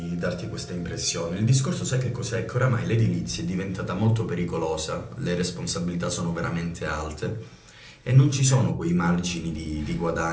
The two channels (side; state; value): both; identical; correlation 1.00